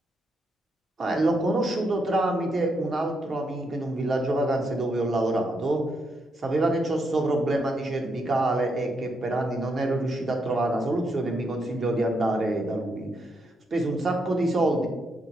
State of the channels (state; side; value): normal; both; correlation 0.79